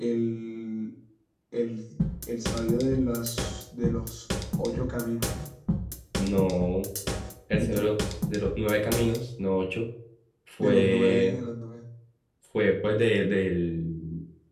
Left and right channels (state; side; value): identical; both; correlation 1.00